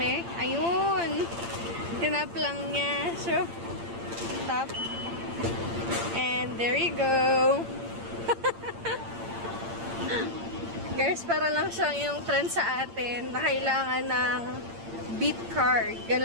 Ayun. Tinap lang niya. So, tap. And there you go. Guys, para lang siyang yung trend sa atin na kailangan ng beat card.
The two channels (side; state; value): left; late; 8.8 ms